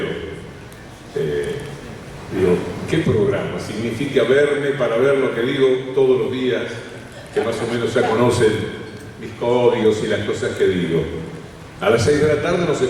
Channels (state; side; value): identical; both; correlation 1.00